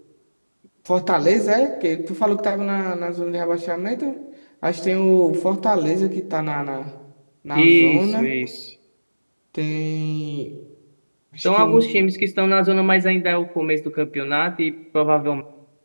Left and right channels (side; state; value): both; inverted; correlation -1.00